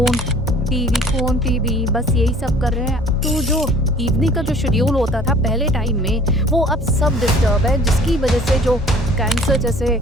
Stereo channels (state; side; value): normal; both; correlation 0.51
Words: टीवी बस यही सब कर रहे हैं। तो जो इवनिंग का जो शेड्यूल होता था पहले टाइम में वो अब सब डिस्टर्ब है, जिसकी वजह से जो कैंसर जैसे